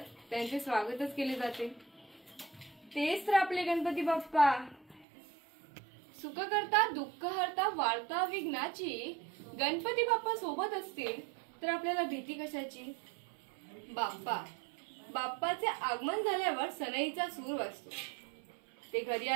त्यांचे स्वागतच केले जाते। तेच तर आपले गणपती बाप्पा। सुख करता दुःख हरता वार्ता विघ्नाची गणपती बाप्पा सोबत असतील तर आपल्याला भीती कशाची। बाप्पाचे आगमन झाल्यावर सनईचा सूर वाजतो, ते घरी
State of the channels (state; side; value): drops out; left; at 5.1 s